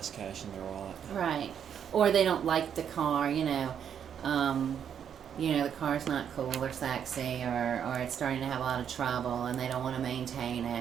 cash in their wallet. Right. Or they don't like the car, the car's not cool or sexy, or it's starting to have a lot of trouble and they don't want to maintain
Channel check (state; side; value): quieter; left; 8.4 dB